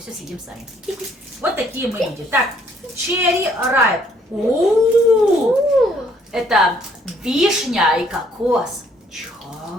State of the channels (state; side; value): normal; both; correlation 0.64